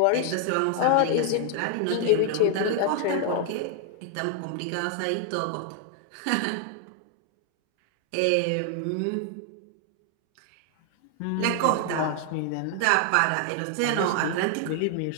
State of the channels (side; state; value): both; different; correlation 0.00